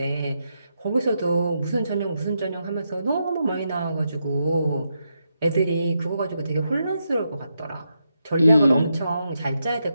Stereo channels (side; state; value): both; inverted; correlation -0.83